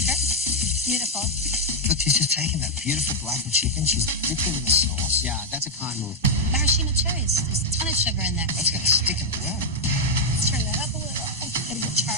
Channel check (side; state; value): both; normal; correlation 0.00